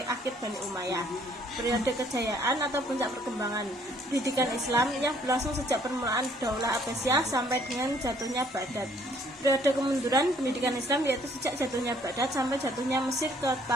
akhir Bani Umayyah. Periode kejayaan atau puncak perkembangan pendidikan Islam yang berlangsung sejak permulaan Daulah Abbasiyah sampai dengan jatuhnya Baghdad. Periode kemunduran pendidikan Islam yaitu sejak jatuhnya Baghdad sampai jatuhnya Mesir ke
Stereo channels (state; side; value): normal; both; correlation 0.62